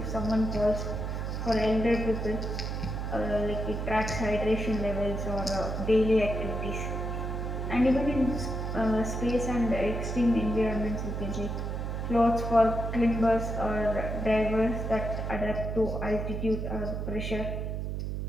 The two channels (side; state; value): right; noise; hum, 3 dB below the sound